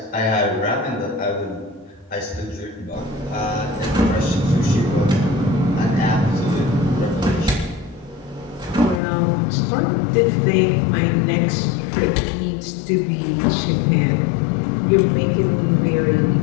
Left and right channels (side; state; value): right; drops out; at 9.0 s